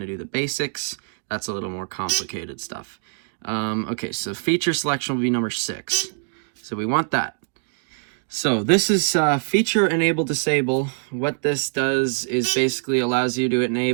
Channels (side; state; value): left; silent; digital silence